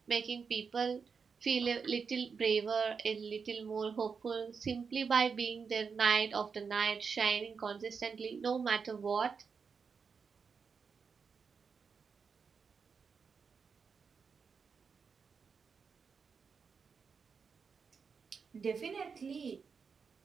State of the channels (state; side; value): quieter; left; 5.7 dB